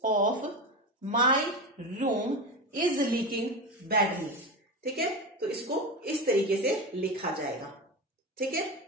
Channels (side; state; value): both; normal; correlation 0.21